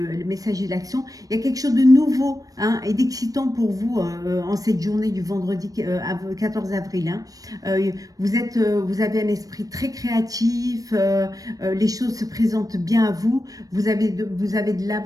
messager de l'action, il y a quelque chose de nouveau hein, et d'excitant pour vous en cette journée du vendredi 14 avril. Hein. Vous avez un esprit très créatif, les choses se présentent bien à vous, vous avez de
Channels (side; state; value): left; late; 0.18 ms